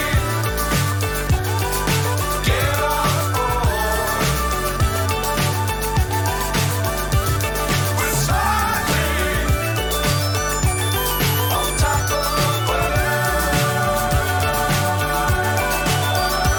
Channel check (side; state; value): both; identical; correlation 1.00